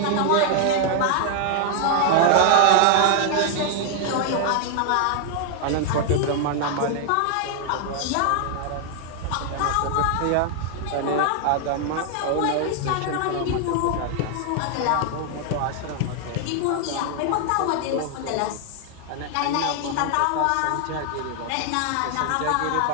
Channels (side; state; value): both; different; correlation 0.00